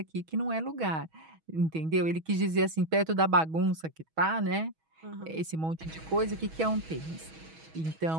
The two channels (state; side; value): late; left; 6.2 ms